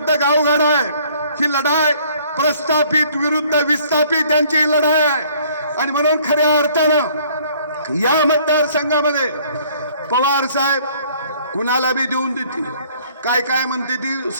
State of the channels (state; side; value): inverted; both; correlation -0.58